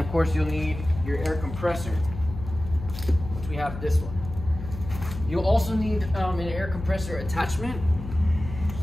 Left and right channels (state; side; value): noise; left; hum, 10 dB below the sound